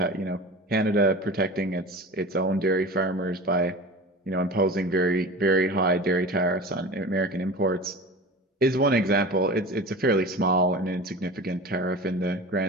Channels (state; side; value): normal; both; correlation 0.34